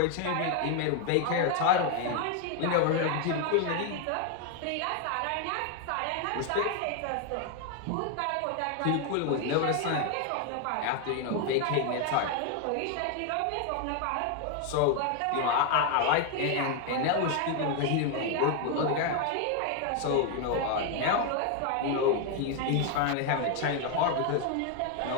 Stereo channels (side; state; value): both; different; correlation 0.01